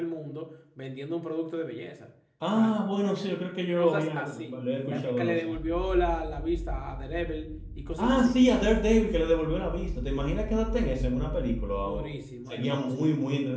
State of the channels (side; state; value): both; identical; correlation 1.00